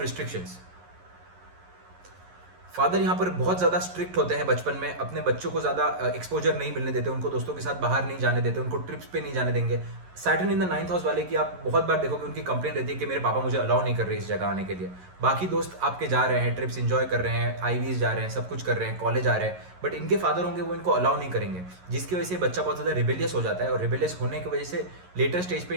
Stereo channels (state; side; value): late; left; 11 ms